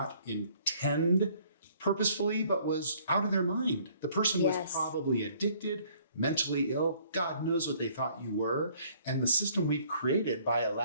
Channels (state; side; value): inverted; both; correlation -0.60